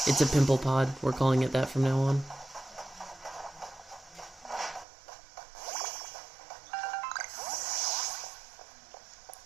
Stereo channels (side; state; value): left; drops out; at 4.9 s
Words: a pimple pod. We're calling it that from now on.